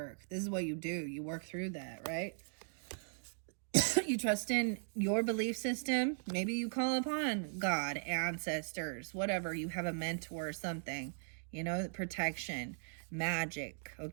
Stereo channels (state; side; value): silent; left; digital silence